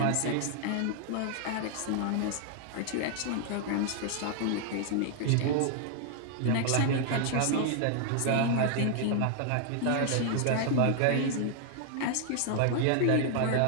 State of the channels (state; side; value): different; both; correlation 0.00